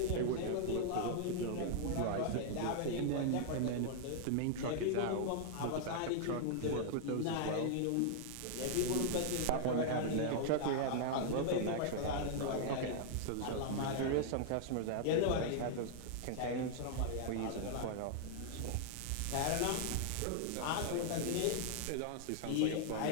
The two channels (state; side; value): different; both; correlation -0.01